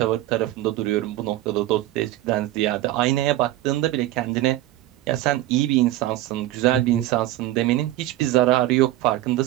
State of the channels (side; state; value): left; quieter; 15.4 dB